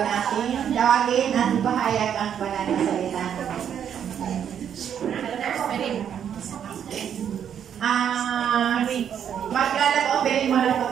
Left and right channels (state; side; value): quieter; left; 8.8 dB